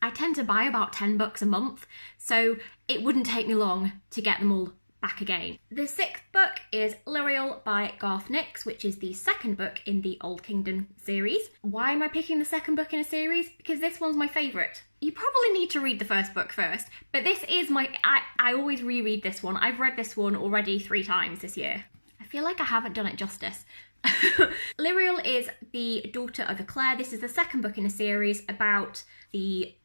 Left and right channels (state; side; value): inverted; both; correlation -1.00